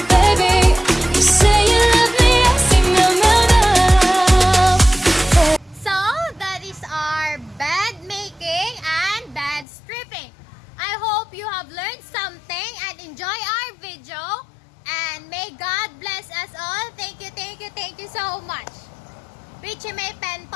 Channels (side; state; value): right; drops out; at 9.7 s